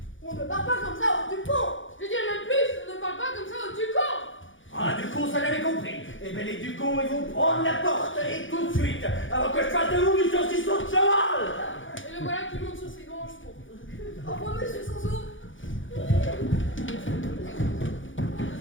On ne parle pas comme ça au Dupont! Je dirais même plus, on ne parle pas comme ça au Ducamp. Ah, du con, ça l'avait compris. Eh ben, les Ducons, ils vont prendre la porte, et tout de suite, avant que je fasse de vous du saucisson de cheval. Et le voilà qui monte sur ses grands chevaux. Au revoir, monsieur Sanso!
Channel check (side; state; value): right; late; 0.56 ms